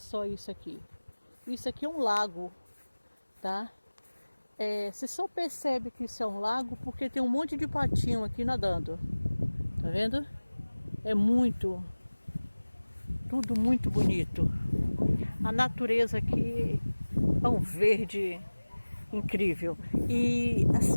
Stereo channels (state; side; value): inverted; both; correlation -1.00